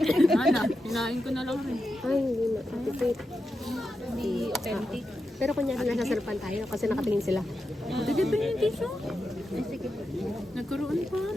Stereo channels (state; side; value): normal; both; correlation 0.88